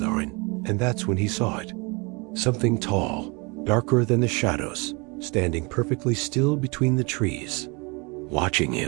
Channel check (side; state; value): left; quieter; 29.1 dB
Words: and that's when he saw it. Something tall, darker than the shadows, standing perfectly still between the trees, watching